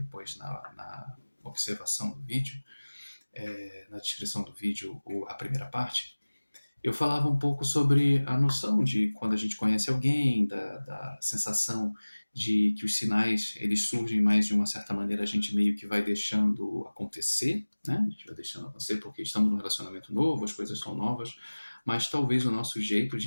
na observação do vídeo, na descrição do vídeo, a primeira parte. Eu falava um pouco sobre a noção de quando a gente conhece alguém, da sensação de que os sinais eles surgem mais de uma certa maneira, a gente meio que vai deixando acontecer, né? A gente vai deixando acontecer porque estamos num relacionamento novo, as coisas são novas, mas talvez o nosso jeito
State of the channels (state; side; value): inverted; both; correlation -1.00